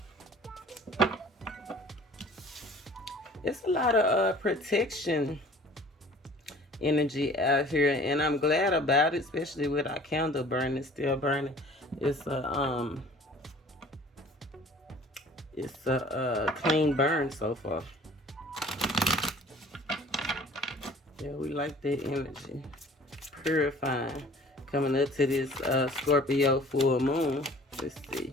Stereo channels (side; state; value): both; normal; correlation 0.49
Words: It's a lot of protection energy out here, and I'm glad about it, especially with our candle burning, still burning. It's a clean burn so far. Yeah, we like that energy. Purifying. Coming up to this Scorpio full moon. Let's see.